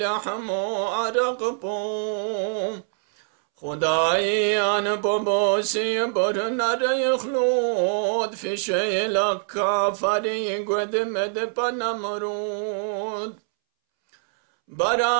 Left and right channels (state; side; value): silent; left; 63 dB below the other